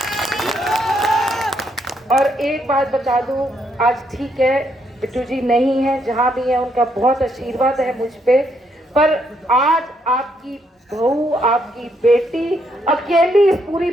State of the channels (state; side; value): normal; both; correlation 0.74